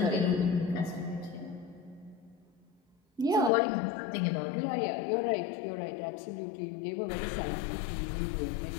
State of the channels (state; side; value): drops out; right; at 3.5 s